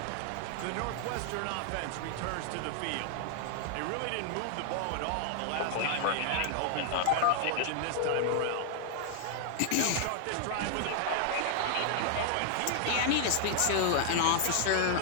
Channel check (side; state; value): both; different; correlation 0.00